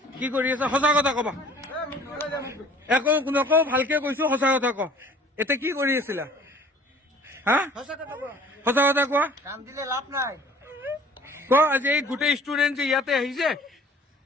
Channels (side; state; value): both; normal; correlation 0.51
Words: কি কৰি আছে সঁচা কথা কবা একো নকওঁ ভালকে কৈছো সঁচা কথা ক এতিয়া কি কৰি আছিলা হা সঁচা কথা কোৱা ক আজি এই গোটেই ষ্টুডেণ্ট যে ইয়াতে আহিছে